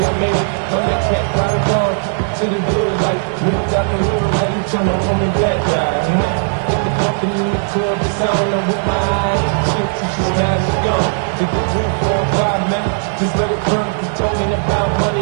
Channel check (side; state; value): left; silent; digital silence